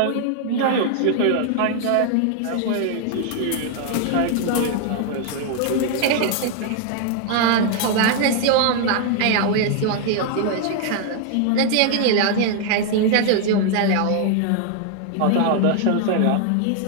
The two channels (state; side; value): different; both; correlation 0.00